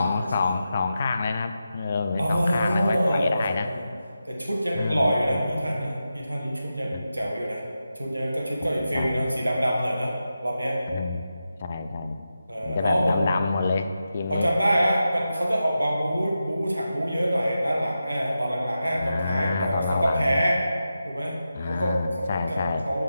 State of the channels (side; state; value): both; inverted; correlation -0.90